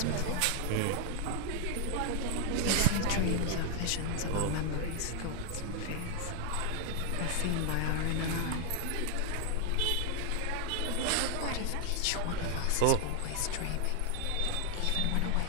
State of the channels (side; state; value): both; different; correlation 0.00